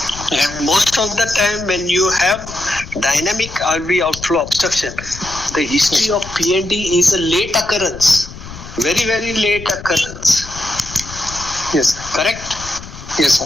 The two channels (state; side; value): noise; left; rumble, 14 dB below the sound